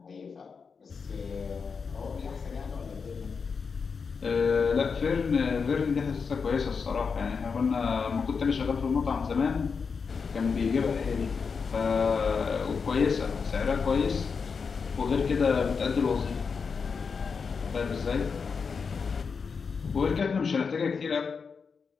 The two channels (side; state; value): right; quieter; 5.5 dB